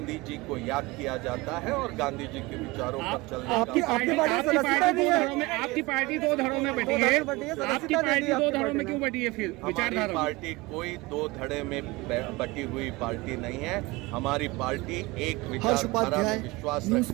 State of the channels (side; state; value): left; quieter; 22.3 dB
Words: जी को याद किया जाता है और गांधी जी के विचारों पर चलने का। आपकी पार्टी 2 धड़ों में बटी है। आपकी पार्टी 2 धड़ों में क्यों बटी है? फिर हमारी पार्टी कोई 2 धड़े में बटी हुई पार्टी नहीं है। हमारी पार्टी एक विचारधारा में विश्वास